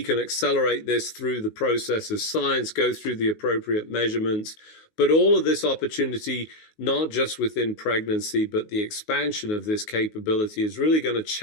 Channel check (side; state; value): right; late; 19 ms